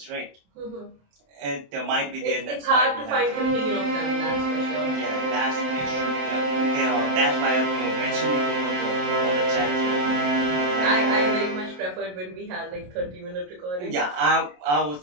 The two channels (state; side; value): late; left; 27 ms